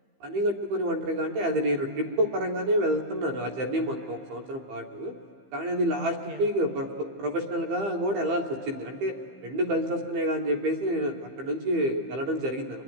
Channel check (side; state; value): left; late; 15 ms